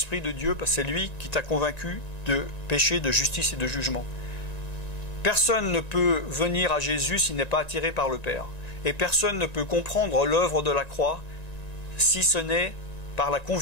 de Dieu, parce que c'est lui qui t'a convaincu de péché, de justice et de jugement. Personne ne peut venir à Jésus s'il n'est pas attiré par le Père. Et personne ne peut comprendre l'œuvre de la croix si ce n'est par la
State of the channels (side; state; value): right; late; 1.9 ms